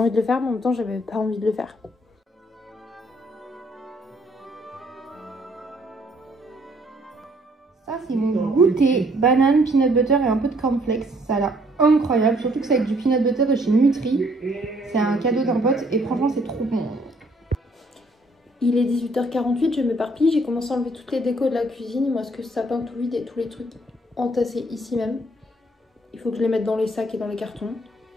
de le faire, mais en même temps, j'avais pas envie de le faire. Ça, c'est mon goûter banane, peanut butter et un peu de cornflakes. Ça a l'air incroyable, surtout que c'est avec du peanut butter de chez Nutri. C'est un cadeau d'un pote et franchement, c'est trop bon. Il est 18h48, je m'éparpille. J'ai commencé à enlever toutes les décos de la cuisine. Il me reste que ce sapin tout vide et tous les trucs entassés ici même. Il faut que je les mette dans les sacs et dans les cartons.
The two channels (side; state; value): both; normal; correlation 0.64